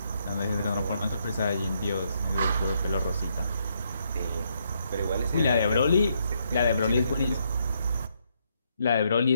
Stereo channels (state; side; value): inverted; both; correlation -0.75